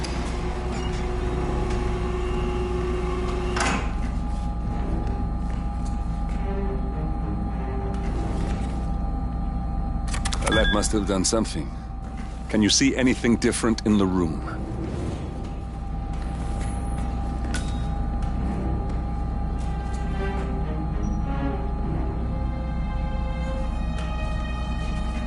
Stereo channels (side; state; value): both; identical; correlation 1.00